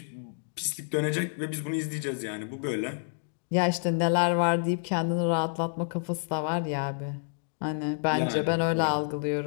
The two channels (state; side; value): silent; right; digital silence